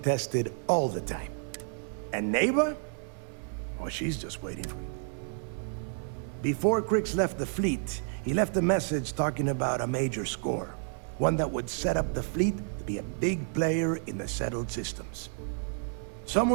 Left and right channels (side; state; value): left; silent; 57 dB below the other